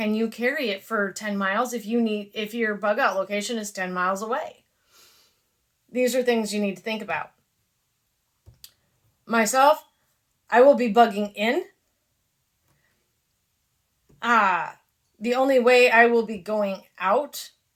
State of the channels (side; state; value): both; identical; correlation 1.00